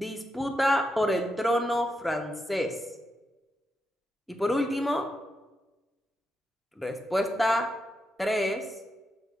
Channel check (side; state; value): both; normal; correlation 0.85